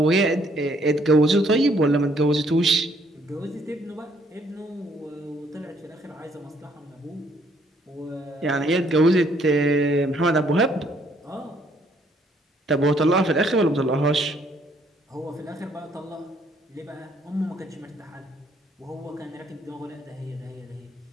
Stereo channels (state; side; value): normal; both; correlation 0.66